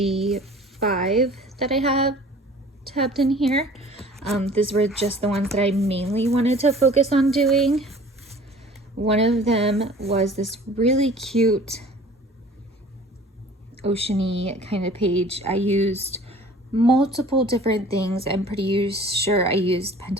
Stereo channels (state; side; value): normal; both; correlation 0.47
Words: 5 that I have tabbed in here. These were just the ones that I mainly wanted to focus on doing. One of them was this really cute oceany kind of page. I used multiple different things. I'm pretty sure I used